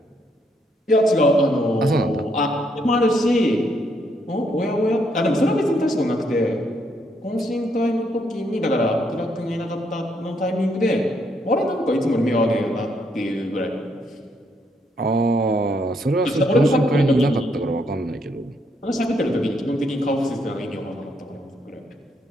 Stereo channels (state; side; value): normal; both; correlation 0.74